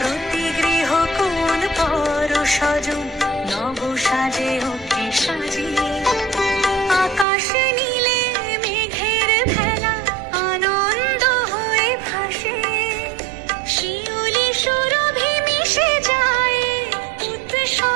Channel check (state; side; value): drops out; left; at 7.2 s